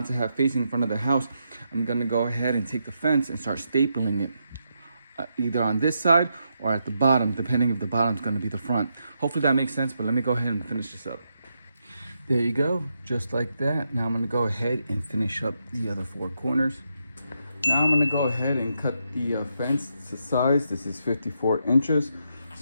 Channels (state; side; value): inverted; both; correlation -0.82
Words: to have facing in front of the house, I'm going to go ahead and take the fence and start stapling it. Either on this side or at the bottom, depending if the bottom's going to be the front. Hopefully that makes sense, but let me go ahead and finish this up. There you go, just like that. Now I'm gonna go ahead and finish up the other 4 corners. Now I'm gonna go ahead and cut the fence to size. This is 54 inches.